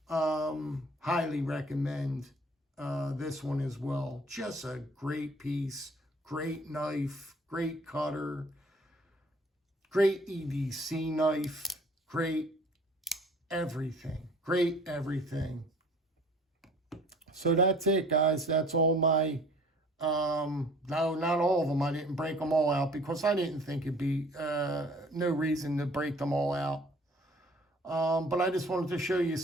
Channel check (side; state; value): both; normal; correlation 0.52